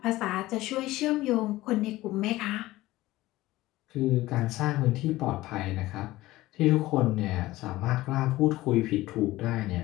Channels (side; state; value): right; quieter; 17.5 dB